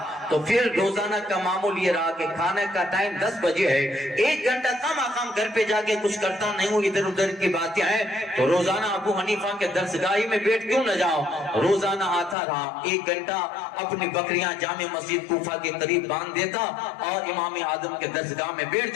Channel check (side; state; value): right; drops out; at 12.4 s